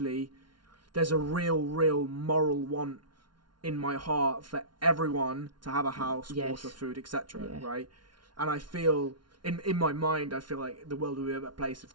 there's a real moral want in my heart for everyone to have a house, water, food, etc. Right? And I feel, in my mind, I feel like the world would be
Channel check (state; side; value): late; left; 0.71 ms